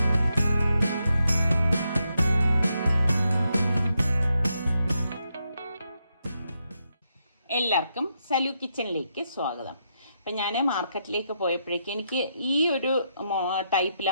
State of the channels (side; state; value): both; inverted; correlation -0.81